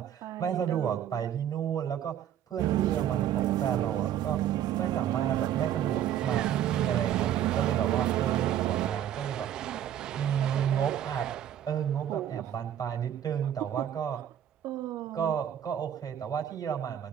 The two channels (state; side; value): quieter; left; 10.5 dB